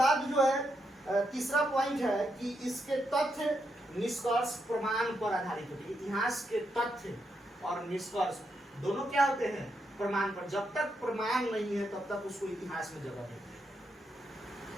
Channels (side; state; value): both; normal; correlation 0.81